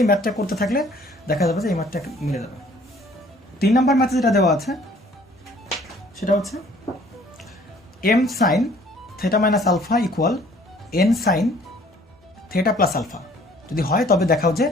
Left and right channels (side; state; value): both; normal; correlation 0.57